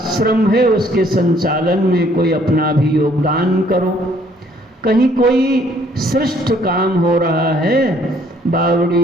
है उसके संचालन में कोई अपना भी योगदान करो, कहीं कोई श्रेष्ठ काम हो रहा है,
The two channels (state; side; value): normal; both; correlation 0.63